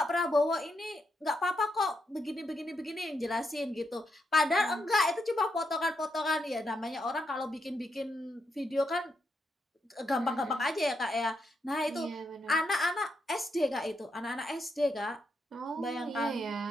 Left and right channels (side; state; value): both; normal; correlation 0.81